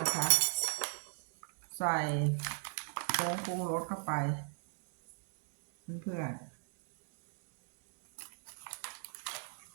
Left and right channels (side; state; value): left; silent; 52 dB below the other